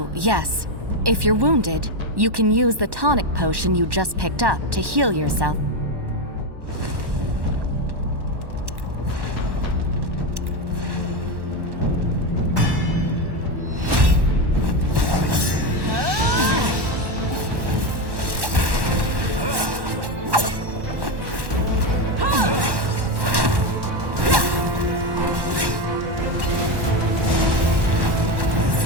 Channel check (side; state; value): left; late; 1.1 ms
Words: yes. If you're wounded, you can use the tonic potion you just picked up to heal yourself.